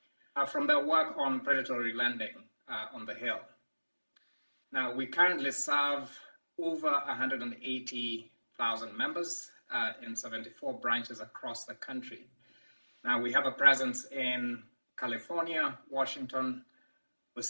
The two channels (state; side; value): inverted; both; correlation -1.00